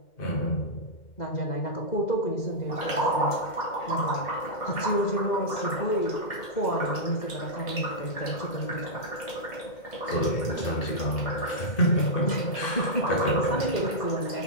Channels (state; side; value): late; right; 2.1 ms